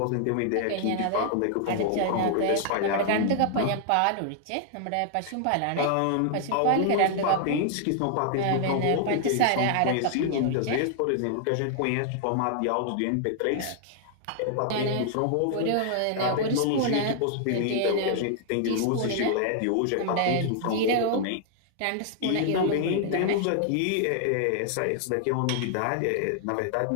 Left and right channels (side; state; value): both; different; correlation 0.00